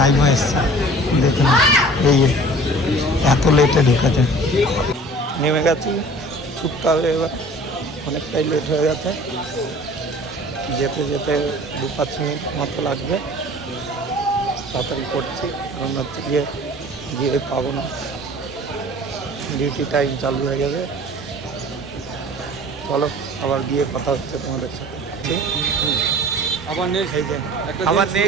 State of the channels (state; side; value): normal; both; correlation 0.46